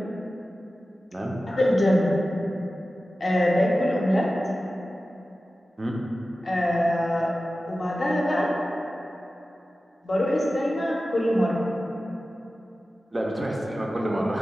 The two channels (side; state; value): both; normal; correlation 0.95